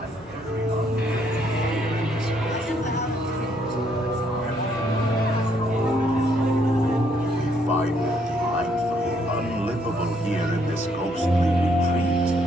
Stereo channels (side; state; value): both; normal; correlation 0.70